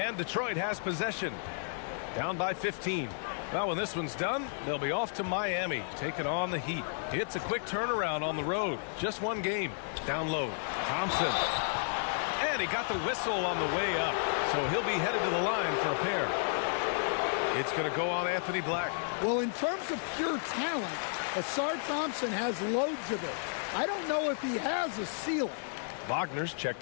Detroit has possession. Down by 15. Well, when this one's done, they'll be off to Miami, taking on the Heat. It's a quick turnaround on the road. Just one game. Down low. Thompson. And he got the whistle on the way up. So he'll be headed to the line for a pair. It's going to go on Anthony Black. Well, in terms of pure talent, Asar Thompson has loads of it. I don't know if he has a ceiling. Wagner's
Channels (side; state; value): right; silent; digital silence